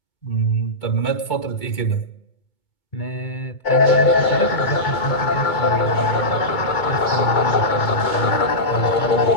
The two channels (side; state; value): right; late; 2.2 ms